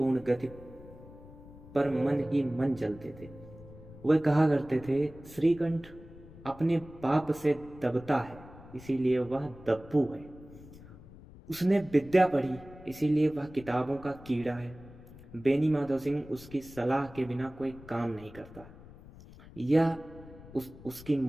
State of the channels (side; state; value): left; noise; rumble, 19 dB below the sound